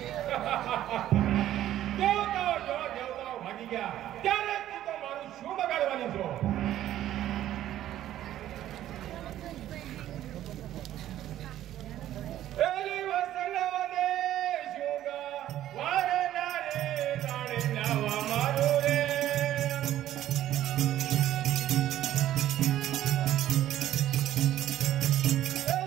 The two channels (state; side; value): quieter; left; 12.7 dB